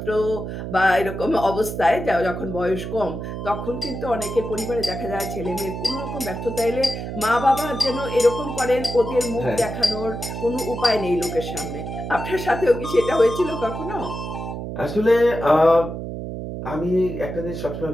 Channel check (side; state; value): right; noise; hum, 6 dB below the sound